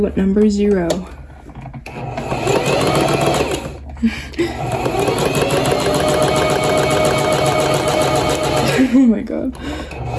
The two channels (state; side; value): identical; both; correlation 1.00